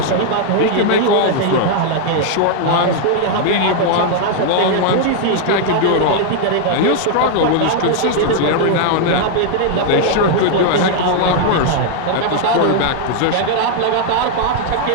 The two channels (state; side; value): different; both; correlation 0.00